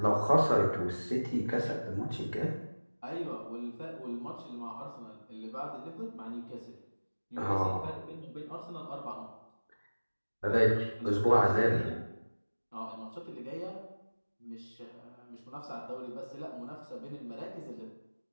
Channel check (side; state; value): both; inverted; correlation -1.00